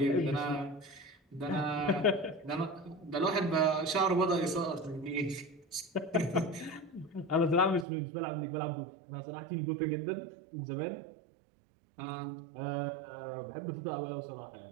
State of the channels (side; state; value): left; drops out; at 7.9 s